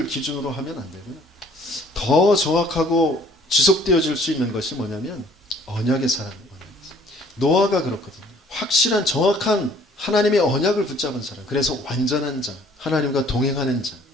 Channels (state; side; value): normal; both; correlation 0.57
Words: 기준으로 하면 안 되고요. 더 정확하고 지속되어질 수 있는 것이 뭐냐면 언약의 사람. 노아가 그렇거든요. 확실한 정확한 하나님의 언약을 붙잡은 사람. 그래서 완전한 자, 하나님과 동행하는